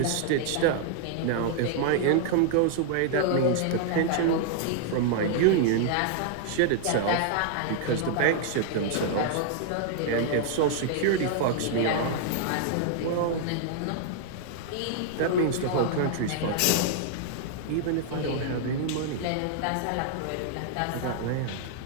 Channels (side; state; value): both; different; correlation -0.01